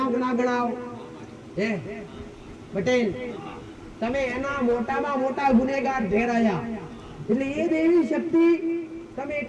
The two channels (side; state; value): both; identical; correlation 1.00